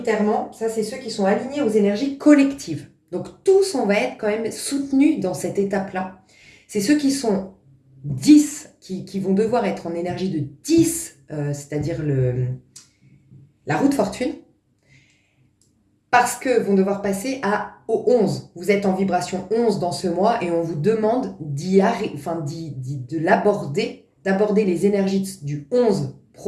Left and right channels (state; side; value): identical; both; correlation 1.00